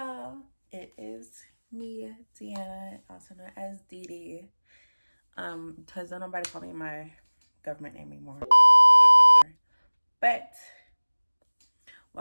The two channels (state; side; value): inverted; both; correlation -1.00